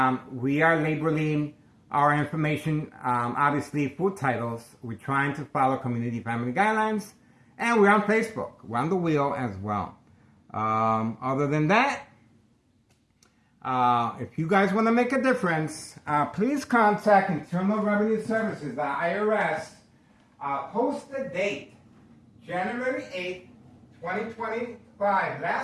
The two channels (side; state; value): both; identical; correlation 1.00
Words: we are labeling our information, obviously, food titles. We're trying to follow community family guidelines, and we're on Facebook. We're on the wheel as well. Other than that, if you guys want to make a difference, please contact Internal Revenue Services, the IRS. Post the date, January 8th, 2025.